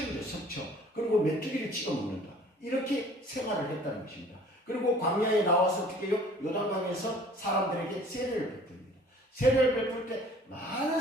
석청. 그리고 메뚜기를 찍어 먹는다. 이렇게 생활을 했다는 것입니다. 그리고 광야에 나와서 어떻게 해요? 요단강에서 사람들에게 세례를 베풉니다. 세례를 베풀 때 많은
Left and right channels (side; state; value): both; normal; correlation 0.51